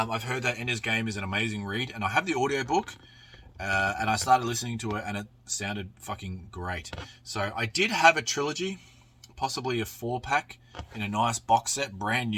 heard that Ender's Game is an amazing read, and I have the audiobook, and I started listening to it, and it sounded fucking great. So I did have a trilogy, possibly a 4-pack, in a nice box set, brand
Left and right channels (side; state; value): both; identical; correlation 1.00